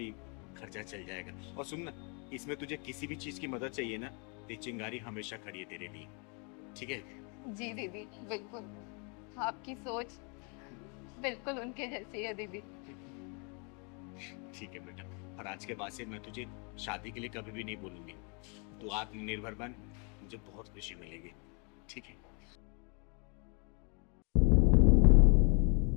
खर्चा चल जाएगा। और सुन ना, इसमें तुझे किसी भी चीज़ की मदद चाहिए ना, तो चिंगारी हमेशा खड़ी है तेरे लिए, ठीक है? जी दीदी बिल्कुल, आपकी सोच बिल्कुल उनके जैसी है दीदी। ठीक है बेटा, और आज के बाद से मैं तुझे शादी के लिए कभी भी नहीं बोलूंगी। तू आत्मनिर्भर बन, मुझे बहुत खुशी मिलेगी, ठीक है?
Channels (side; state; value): right; quieter; 35.5 dB